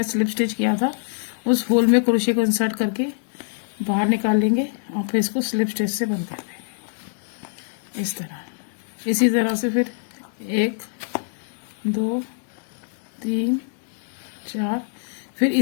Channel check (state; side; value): silent; right; digital silence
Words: स्लिप स्टिच किया था, उस होल में क्रोशिया को इंसर्ट करके बाहर निकाल लेंगे और फिर इसको स्लिप स्टिच से बंद कर देंगे इस तरह। इसी तरह से फिर 1 2 3 4 फिर